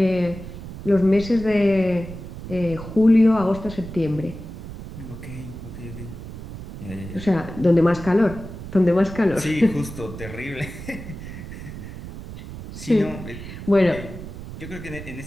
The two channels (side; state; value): right; noise; rumble, 11 dB below the sound